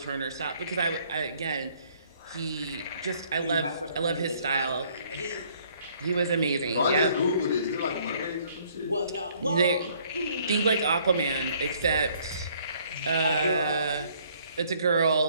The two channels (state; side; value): inverted; both; correlation -0.62